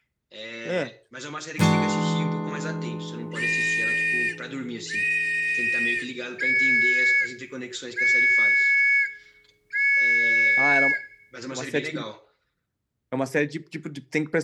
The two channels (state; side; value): identical; both; correlation 1.00